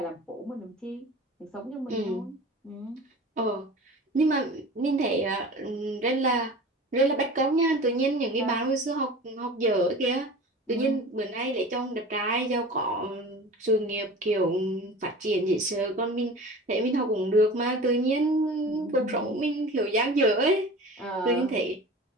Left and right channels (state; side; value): normal; both; correlation 0.37